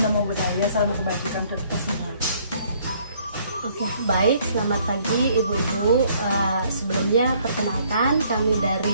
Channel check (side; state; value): both; inverted; correlation -0.63